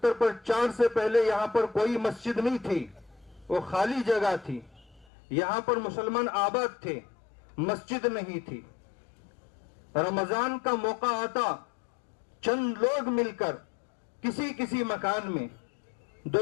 پر 4 سے پہلے یہاں پر کوئی مسجد نہیں تھی، وہ خالی جگہ تھی، یہاں پر مسلمان آباد تھے، مسجد نہیں تھی۔ رمضان کا موقع آتا، چند لوگ مل کر کسی مکان میں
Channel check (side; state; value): right; drops out; at 5.1 s